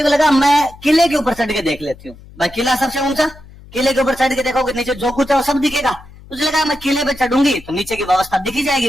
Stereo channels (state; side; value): noise; left; hum, 21 dB below the sound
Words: को लगा मैं किले के ऊपर चढ़ के देख लेती हूँ, भाई किला सबसे ऊंचा, किले के ऊपर चढ़ के देखोगे नीचे जो कुछ है वो सब दिखेगा। मुझे लगा मैं किले पे चढ़ूंगी तो नीचे की व्यवस्था दिखी